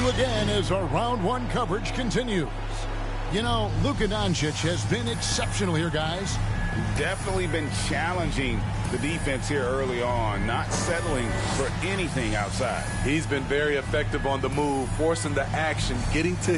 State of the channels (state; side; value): identical; both; correlation 1.00